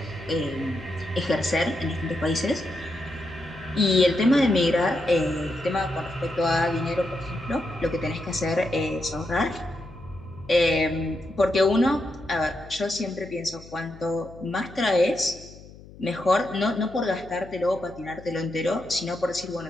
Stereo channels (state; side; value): noise; left; hum, 19 dB below the sound